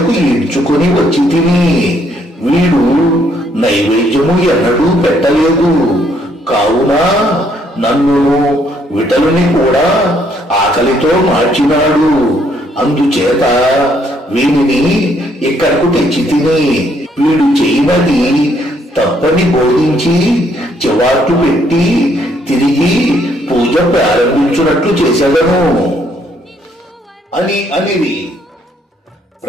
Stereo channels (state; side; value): normal; both; correlation 0.69